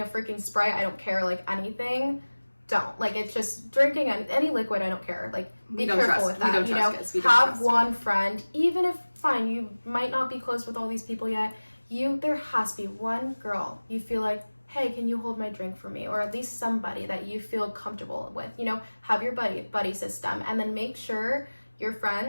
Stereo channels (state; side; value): inverted; both; correlation -1.00